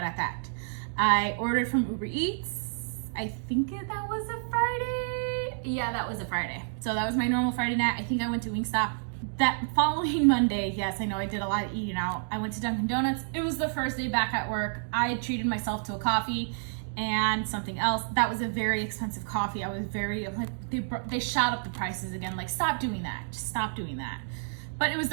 that. I ordered from Uber Eats. I think that was a Friday. Yeah, that was a Friday. So that was my normal Friday night. I think I went to Wingstop. That following Monday, yes, I know I did a lot of eating out. I went to Dunkin' Donuts. It was the first day back at work. I had treated myself to a coffee and something else. That was a very expensive coffee. I was very, like, they shot up the prices again. Like, stop doing that. Just stop doing that. But it was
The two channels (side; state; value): left; silent; digital silence